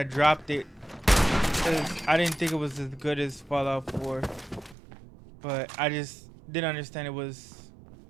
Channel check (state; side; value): drops out; left; at 4.8 s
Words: dropped it because I didn't think it was as good as Fallout 4. But I just didn't understand it was